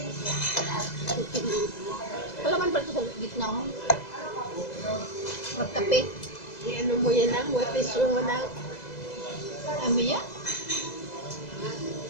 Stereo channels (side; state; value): right; late; 2.0 ms